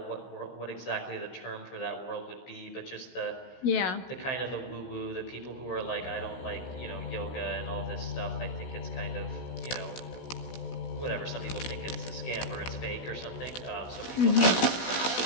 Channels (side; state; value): right; late; 16 ms